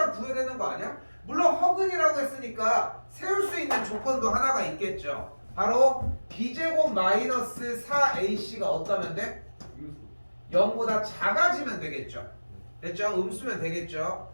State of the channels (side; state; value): both; inverted; correlation -1.00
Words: 구해야 되는 거 아니야? 물론 허근이라고 했으니까 세울 수 있는 조건도 하나가 있겠죠. 바로 b제곱 마이너스 4ac가 어떠면 돼? 0보다 작아지면 되겠죠. 됐죠? 음수면 되겠죠.